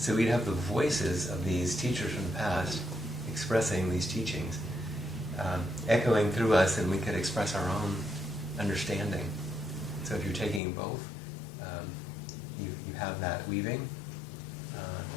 we'd have the voices of these teachers from the past expressing these teachings, echoing through us, and we could express our own understanding. So if you're taking both, you have that weaving.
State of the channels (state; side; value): drops out; right; at 10.6 s